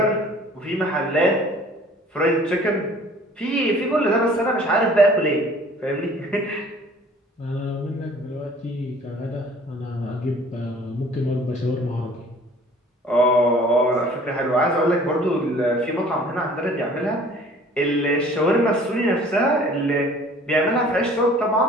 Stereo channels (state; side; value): normal; both; correlation 0.51